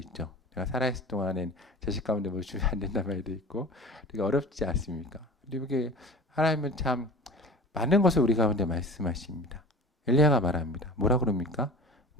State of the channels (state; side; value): normal; both; correlation 0.38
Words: 내가 살아있을 동안엔 자식 가운데 뭘 주면 안 된다는 말도 있고 되게 어렵지 않습니까? 이게 하나님은 참 많은 것을 우리 가운데 말씀하십니다. 엘리야가 말합니다. 뭐라 그럽니까?